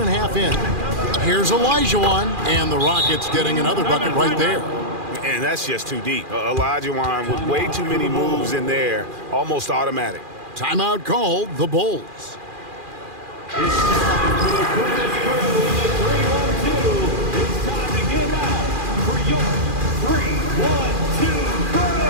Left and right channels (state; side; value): late; left; 2.4 ms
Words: a half in. Here's Olajuwon. And the Rockets getting another bucket right there. And that's just too deep. Olajuwon with way too many moves in there. Almost automatic. Timeout called. The Bulls. It's time for the quickest crew in the 3-1-2. It's time to get out for your 3-1-2 crew.